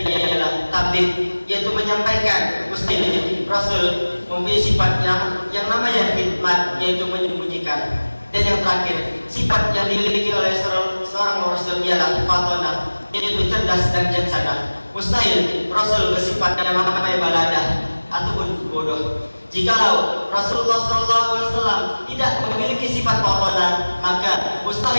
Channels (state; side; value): inverted; both; correlation -1.00